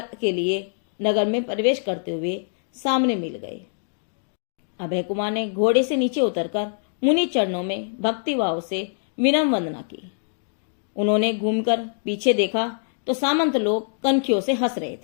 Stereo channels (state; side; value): silent; right; digital silence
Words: के लिए नगर में प्रवेश करते हुए सामने मिल गए। अभय कुमार ने घोड़े से नीचे उतरकर मुनि चरणों में भक्ति भाव से विनम्र वंदना की। उन्होंने घूमकर पीछे देखा तो सामंत लोग कनखियों से हंस रहे